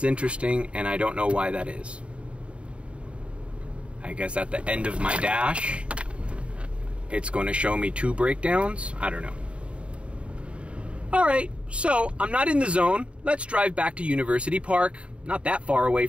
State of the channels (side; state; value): left; late; 0.060 ms